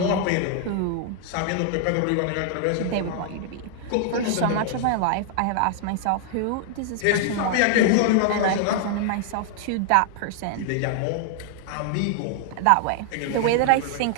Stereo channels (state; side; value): different; both; correlation 0.00